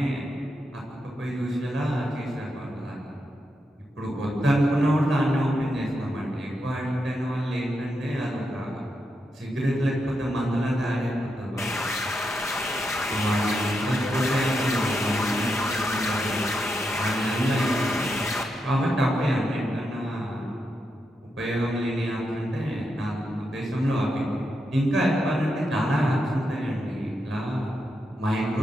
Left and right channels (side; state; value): both; normal; correlation 0.84